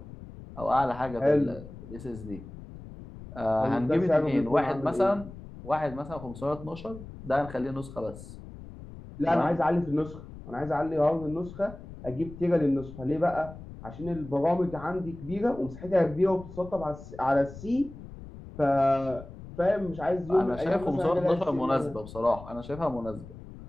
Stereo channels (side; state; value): left; noise; rumble, 15 dB below the sound